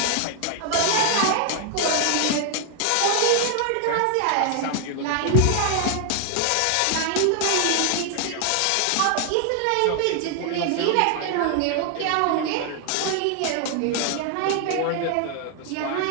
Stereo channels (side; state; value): both; different; correlation 0.00